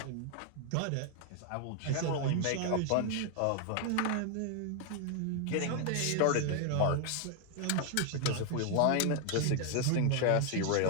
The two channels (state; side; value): different; both; correlation 0.00